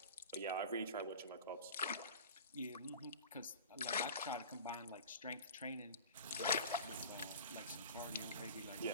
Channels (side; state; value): both; inverted; correlation -0.36